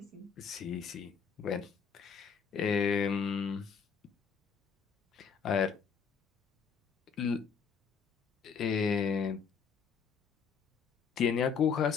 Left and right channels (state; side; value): quieter; right; 6.3 dB